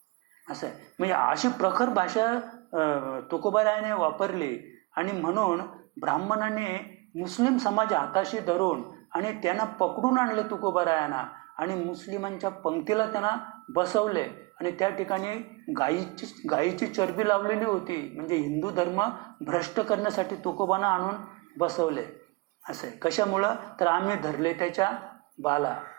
असं आहे. म्हणजे अशी प्रखर भाषा तुकोबारायाने वापरली आणि म्हणून ब्राह्मणाने मुस्लिम समाज हाताशी धरून आणि त्यांना पकडून आणले तुकोबारायांना आणि मुस्लिमांच्या पंक्तीला त्यांना बसवले आणि त्या ठिकाणी गायीची चरबी लावलेली होती. म्हणजे हिंदू धर्म भ्रष्ट करण्यासाठी तुकोबांना आणून बसवले. असं आहे. कशामुळं? तर आम्ही धरले त्याच्या बाला.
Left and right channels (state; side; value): quieter; left; 25.3 dB